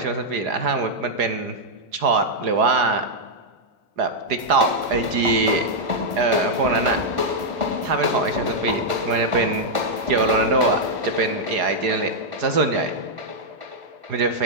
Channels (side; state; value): left; late; 1.5 ms